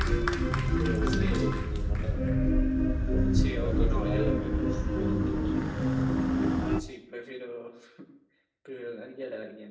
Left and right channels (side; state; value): both; identical; correlation 1.00